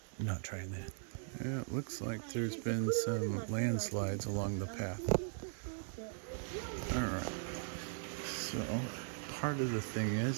I'm not trying that. Yeah, it looks like there's been some landslides along the path. Alright, so part of the thing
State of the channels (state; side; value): silent; left; 52 dB below the other